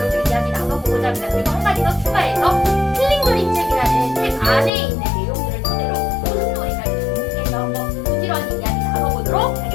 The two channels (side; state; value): right; drops out; at 4.7 s